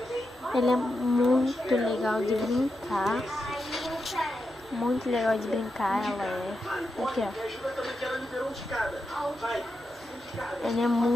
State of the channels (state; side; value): normal; both; correlation 0.87